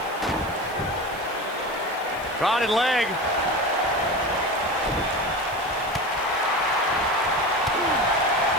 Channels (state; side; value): noise; left; hiss, 20 dB below the sound